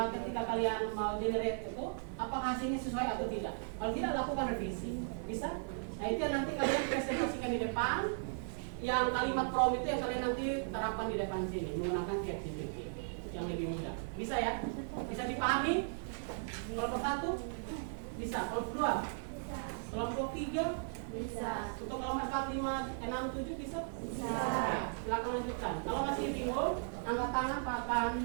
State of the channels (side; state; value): left; silent; 53 dB below the other